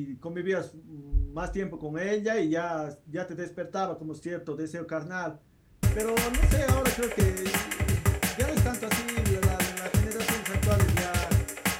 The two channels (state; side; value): identical; both; correlation 1.00